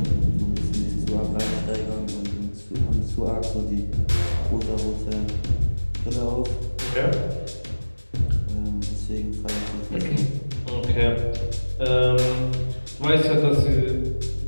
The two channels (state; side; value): inverted; both; correlation -1.00